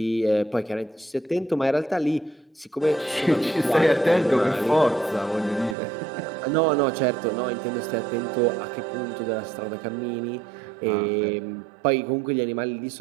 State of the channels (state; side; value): drops out; left; at 5.8 s